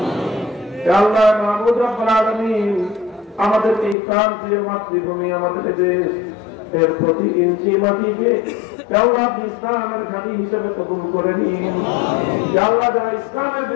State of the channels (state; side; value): drops out; right; at 4.0 s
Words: হে আল্লাহ মাবুদ রব্বুল আলামিন আমাদের এই প্রান্তীয় মাতৃভূমি, আমাদের দেশ, এর প্রতি ইঞ্চি মাটিকে আল্লাহ ইসলামের ঘাঁটি হিসেবে কবুল করে নিন। আল্লাহ যারা ইসলামের